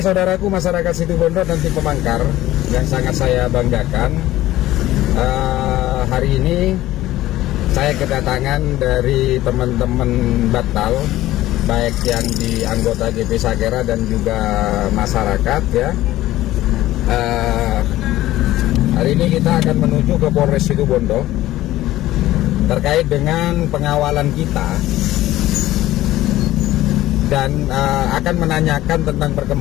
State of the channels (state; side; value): quieter; right; 15.4 dB